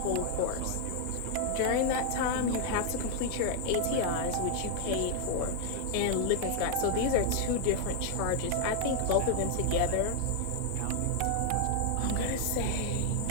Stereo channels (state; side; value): different; both; correlation 0.00